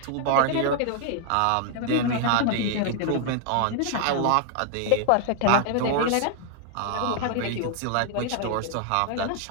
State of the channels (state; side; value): different; both; correlation 0.00